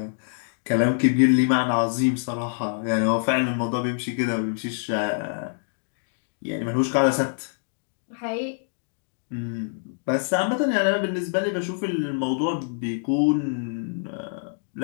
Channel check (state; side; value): silent; right; digital silence